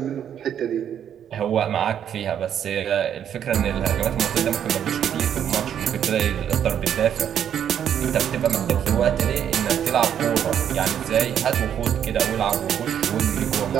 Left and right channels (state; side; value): quieter; left; 9.2 dB